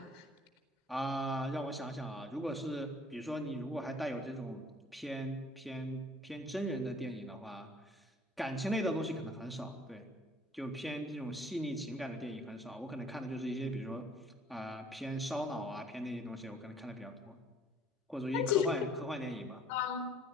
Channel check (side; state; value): both; normal; correlation 0.55